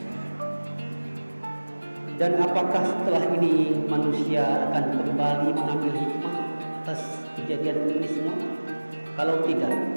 Dan apakah setelah ini manusia akan kembali mengambil hikmah atas kejadian ini semua? Kalau tidak,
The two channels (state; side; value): inverted; both; correlation -1.00